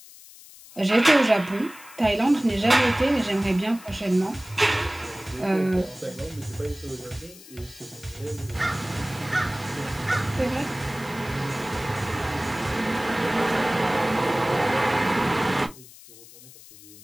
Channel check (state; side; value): noise; left; hiss, 20 dB below the sound